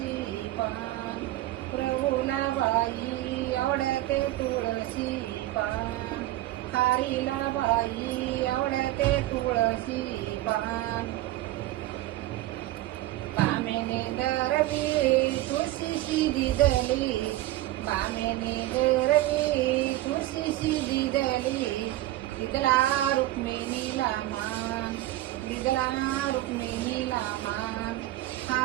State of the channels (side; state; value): left; quieter; 15.9 dB